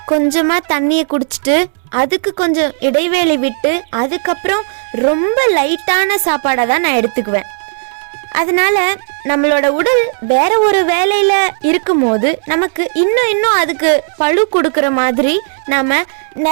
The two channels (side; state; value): left; silent; digital silence